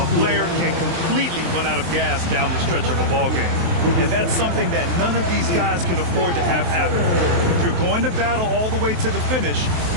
player can completely run out of gas down the stretch of a ball game. And that's something that none of these guys can afford to have happen. If you're going to battle all the way to the finish, you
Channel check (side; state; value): left; late; 23 ms